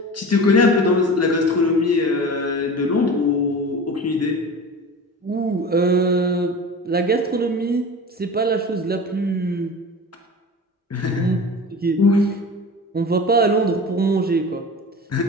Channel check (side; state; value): both; normal; correlation 0.34